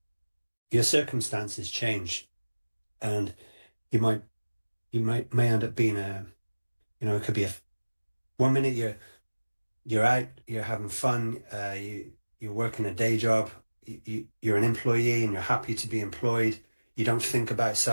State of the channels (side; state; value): both; inverted; correlation -1.00